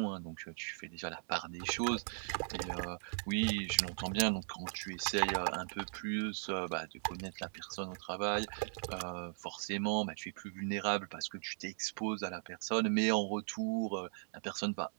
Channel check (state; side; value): silent; left; 52 dB below the other